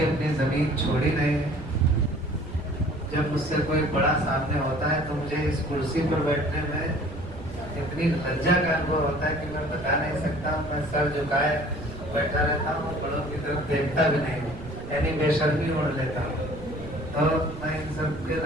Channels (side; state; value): right; noise; rumble, 14 dB below the sound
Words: अपनी जमीन छोड़ी नहीं है। जब मुझसे कोई बड़ा सामने होता है तो मुझे इस कुर्सी पर बैठने में इतनी लज्जा का अनुभव होता है कि मैं बता नहीं सकता हूँ। मैं सर झुकाए बैठा रहता हूँ, बड़ों की तरफ देखता भी नहीं, यानी बेशर्मी ओढ़ लेता हूँ। तो मैं इन सब के